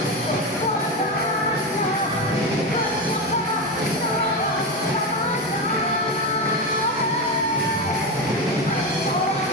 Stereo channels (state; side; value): normal; both; correlation 0.16